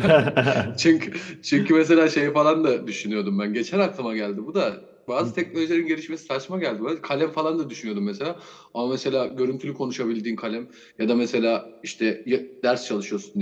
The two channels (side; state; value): both; identical; correlation 1.00